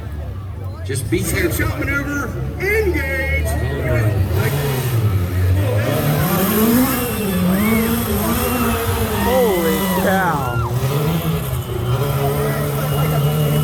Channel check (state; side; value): identical; both; correlation 1.00